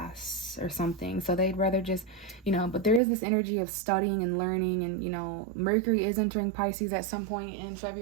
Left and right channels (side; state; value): left; drops out; at 3.0 s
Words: or something, so they'd rather just, you know. But there is this energy of studying and learning, and, you know, Mercury is entering Pisces at some point in